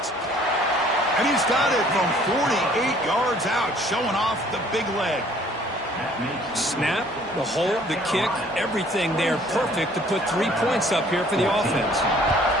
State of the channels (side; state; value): both; normal; correlation 0.57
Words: And he's got it from 48 yards out, showing off the big leg. Snap, the hold, the kick, everything there perfect to put 3 points up here for the offense.